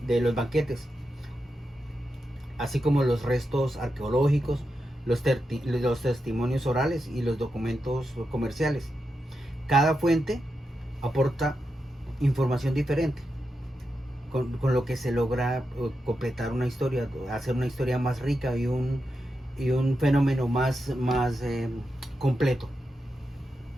de los banquetes, así como los restos arqueológicos, los testimonios orales y los documentos comerciales. Cada fuente aporta información diferente, con lo que se logra completar una historia, hacer una historia más rica y un fenómeno más completo.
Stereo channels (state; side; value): normal; both; correlation 0.87